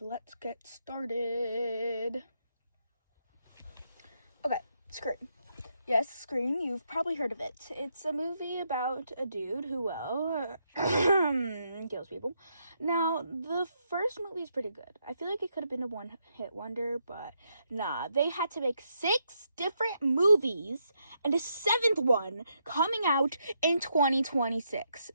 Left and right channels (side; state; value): both; inverted; correlation -0.78